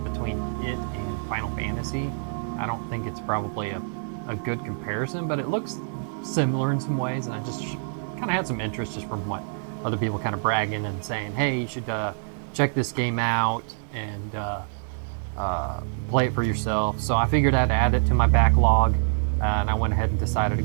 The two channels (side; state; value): left; silent; digital silence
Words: between it and Final Fantasy, I don't think it's probably a good comparison, but it looks similar in some ways, and I just kind of had some interest just from what other people kind of bragging and saying, hey, you should check this game out and play it for yourself. So I figured I'd add it to my backlog, and I went ahead and decided to